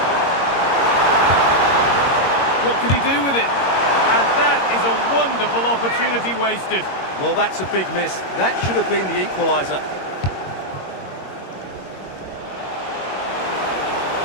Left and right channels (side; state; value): right; late; 22 ms